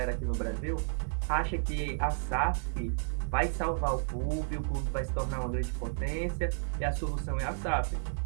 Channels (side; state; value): left; silent; digital silence